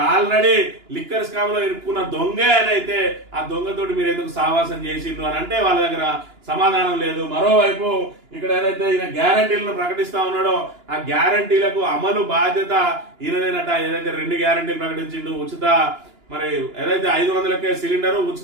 ఆల్రెడీ లిక్కర్ స్కామ్ లో ఇరుక్కున్న దొంగే అని అయితే ఆ దొంగతోటి మీరు ఎందుకు సావాసం చేసిండ్రు అని అంటే వాళ్ళ దగ్గర సమాధానం లేదు. మరోవైపు ఇక్కడ ఏదైతే ఈయన గ్యారంటీలను ప్రకటిస్తా ఉన్నాడో ఆ గ్యారంటీలకు అమలు బాధ్యత ఈయనదేనట. ఏదైతే 2 గ్యారంటీలు ప్రకటించిండు, ఉచిత మరి ఏదైతే 500కే సిలిండర్,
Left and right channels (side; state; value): left; late; 2.9 ms